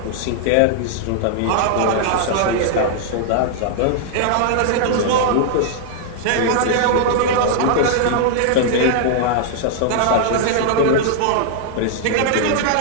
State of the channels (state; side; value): different; both; correlation -0.01